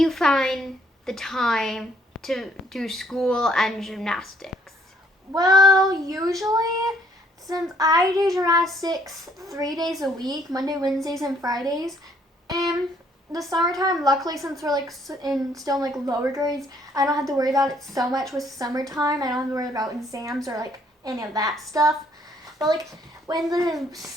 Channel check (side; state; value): both; normal; correlation 0.65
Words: find the time to do school and gymnastics? Well, usually, since I do gymnastics 3 days a week, Monday, Wednesdays, and Fridays, and the summertime, luckily, since we're still in lower grades, I don't have to worry about it so much with summertime. I don't have to worry about exams or any of that stuff. But when the